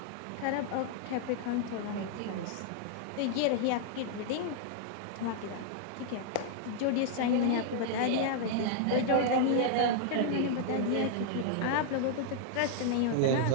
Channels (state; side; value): different; both; correlation -0.01